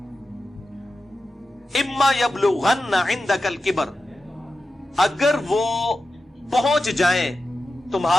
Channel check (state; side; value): normal; both; correlation 0.92